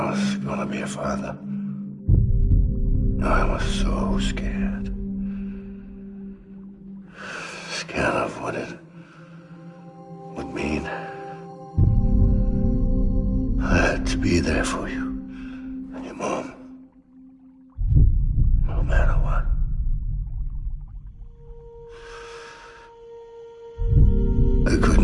was gonna be a father, I was so scared. Scared of what it would mean. I had to be there for you and your mom, no matter what. I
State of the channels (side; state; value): both; identical; correlation 1.00